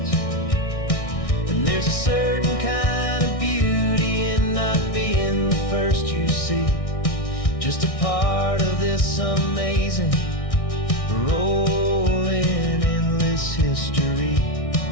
And there's a certain kind of beauty in not being the first you see, just a part of this amazing, rolling, endless history.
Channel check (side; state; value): right; late; 1.6 ms